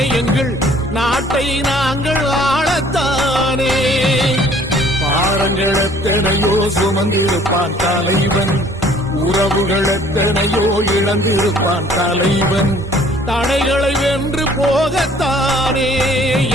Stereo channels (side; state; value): both; normal; correlation 0.56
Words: எங்கள் நாட்டை நாங்கள் ஆளத்தானே பாரங்கள் எத்தனையோ சுமந்திருப்பான் தலைவன் உறவுகள் எத்தனையோ இழந்திருப்பான் தலைவன் தடைகளை வென்று போகத்தானே